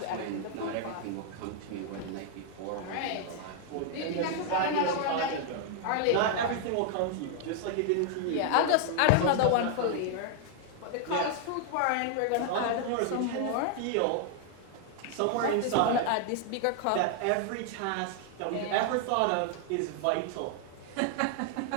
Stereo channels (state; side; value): different; both; correlation 0.00